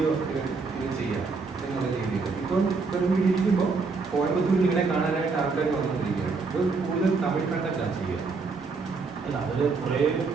ഇങ്ങനെ ചെയ്യാം എന്നുള്ള രീതിയിൽ. ഇപ്പം ഇരിക്കുമ്പോൾ കോയമ്പത്തൂരിൽ ഇങ്ങനെ കാണാനായിട്ട് ആൾക്കാർ വന്നുകൊണ്ടിരിക്കുകയാണ്. ഇത് കൂടുതൽ തമിഴ് കണ്ടന്റാണ് ചെയ്യുക. അല്ല അതിൽ കുറേ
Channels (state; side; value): quieter; left; 4.4 dB